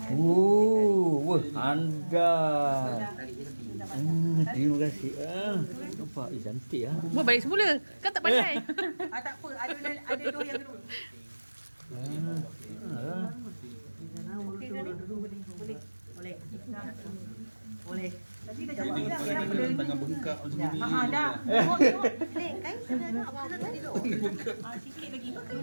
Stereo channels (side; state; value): both; inverted; correlation -1.00